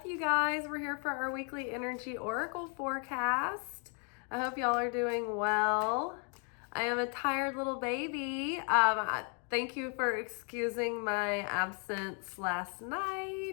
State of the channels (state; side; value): quieter; right; 38.8 dB